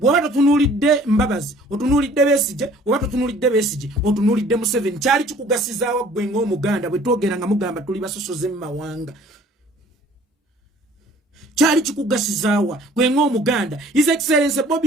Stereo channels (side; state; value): both; normal; correlation 0.53